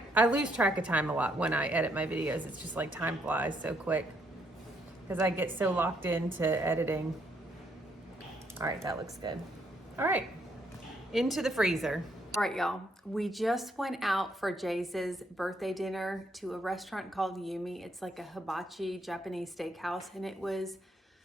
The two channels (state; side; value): normal; both; correlation 0.73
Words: lose track of time a lot when I edit my videos. It's just like time flies so quick because I get so locked into editing. All right, that looks good. All right, into the freezer. All right, y'all, we just went out for Jace's birthday dinner to a restaurant called Yumi. It's like a hibachi Japanese steakhouse, and it was